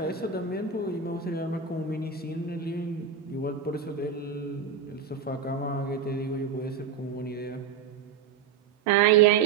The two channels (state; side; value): quieter; left; 6.7 dB